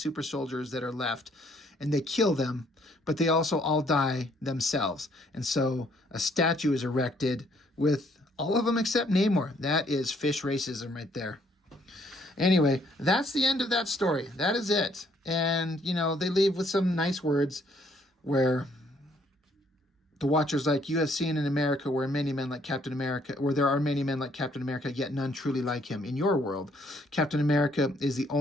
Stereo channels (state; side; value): normal; both; correlation 0.66